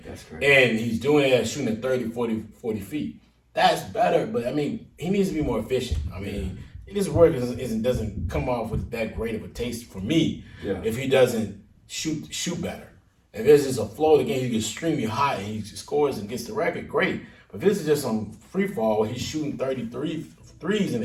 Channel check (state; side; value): identical; both; correlation 1.00